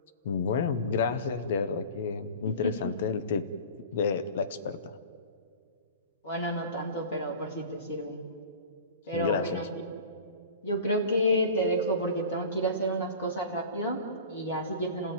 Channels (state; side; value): inverted; both; correlation -0.38